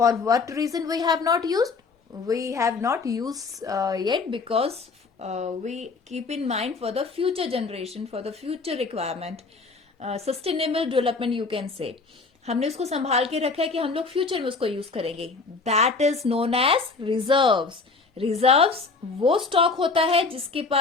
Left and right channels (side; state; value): right; quieter; 4.2 dB